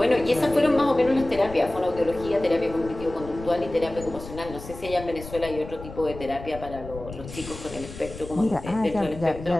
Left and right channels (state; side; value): noise; left; rumble, 13 dB below the sound